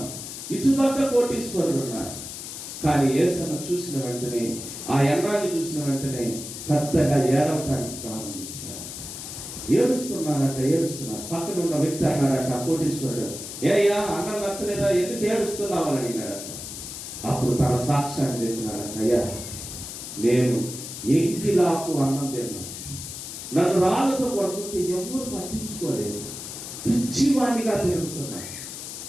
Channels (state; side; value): noise; left; hiss, 9 dB below the sound